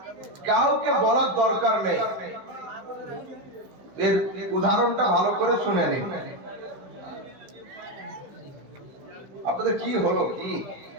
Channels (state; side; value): late; left; 15 ms